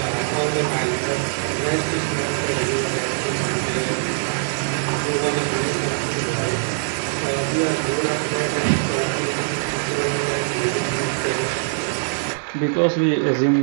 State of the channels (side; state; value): left; silent; digital silence